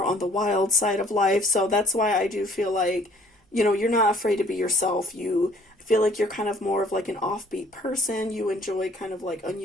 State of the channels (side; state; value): both; normal; correlation 0.58